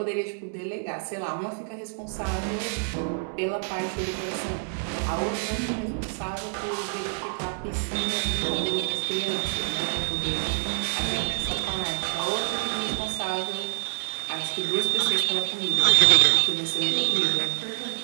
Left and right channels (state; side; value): silent; left; 56 dB below the other